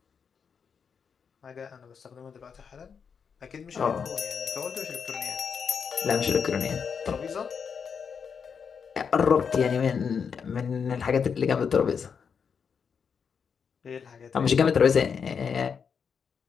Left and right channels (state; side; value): quieter; right; 6.5 dB